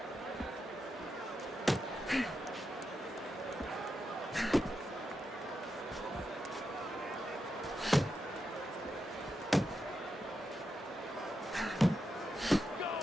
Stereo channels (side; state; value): both; normal; correlation 0.86